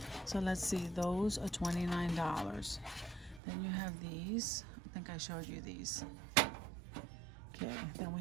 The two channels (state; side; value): drops out; left; at 3.4 s